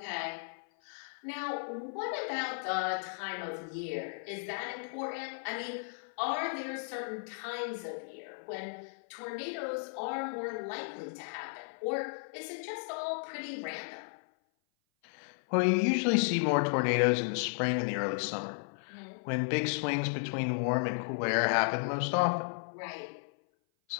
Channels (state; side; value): silent; right; 55 dB below the other